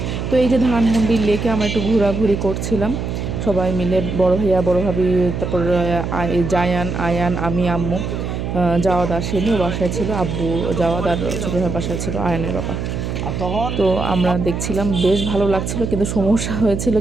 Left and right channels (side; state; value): right; noise; hum, 4 dB below the sound